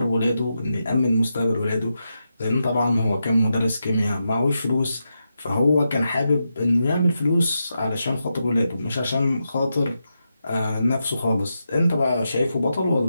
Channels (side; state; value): both; inverted; correlation -0.87